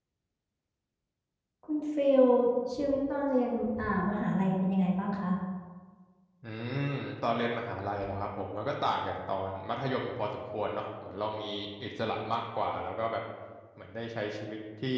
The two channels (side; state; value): both; identical; correlation 1.00